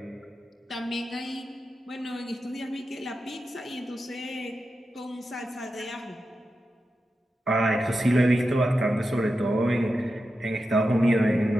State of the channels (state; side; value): normal; both; correlation 0.90